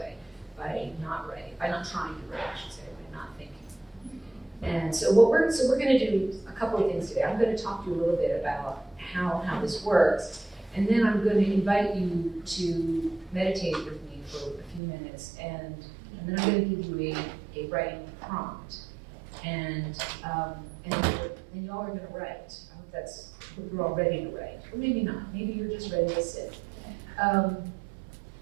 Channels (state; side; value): drops out; left; at 14.8 s